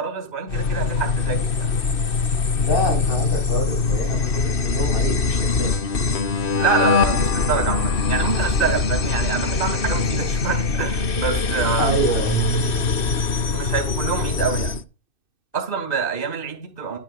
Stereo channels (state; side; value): late; right; 2.6 ms